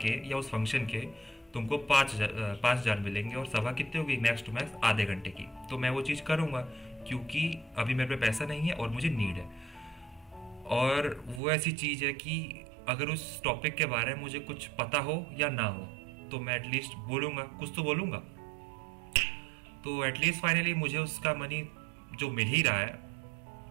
या उस फंक्शन के तुमको 5,000 मिलेंगे, और सभा कितनी होगी, मैक्स टू मैक्स आधे घंटे की। तो मैं वो चीज़ करूँगा क्योंकि अभी मेरे पे पैसा नहीं है और मुझे नीड है। और वो ऐसी चीज़ है कि अगर उस टॉपिक के बारे में मुझे कुछ पता हो या ना हो तो मैं एटलीस्ट बोलूँगा, कुछ तो बोलूँगा। तो एटलीस्ट फाइनली मुझे उसका मनी जो मिल ही रहा है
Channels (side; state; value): left; drops out; at 11.4 s